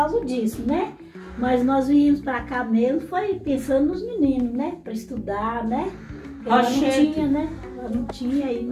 disso, né? Mas nós viemos pra cá mesmo, foi pensando nos meninos, né? Pra estudar, né? Porque ela não tinha, né? Ela não tinha, aí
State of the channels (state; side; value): identical; both; correlation 1.00